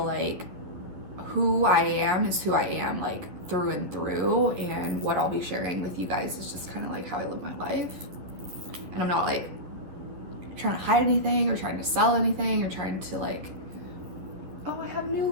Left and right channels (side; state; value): left; late; 11 ms